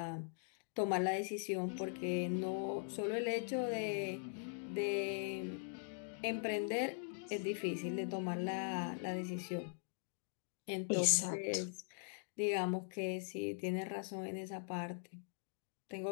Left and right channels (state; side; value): silent; right; digital silence